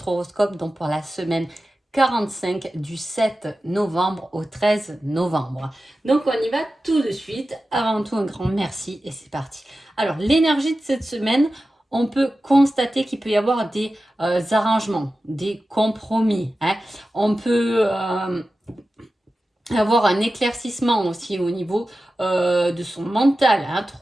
horoscope, donc pour la semaine 45 du 7 novembre au 13 novembre. Donc on y va tout de suite. Avant tout, un grand merci et c'est parti. Alors l'énergie de cette semaine, on peut constater qu'il peut y avoir des arrangements, des compromis, hein. On peut avoir un éclaircissement aussi au niveau de son mental, hein,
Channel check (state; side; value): normal; both; correlation 0.94